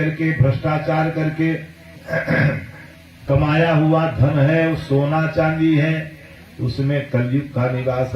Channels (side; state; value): both; identical; correlation 1.00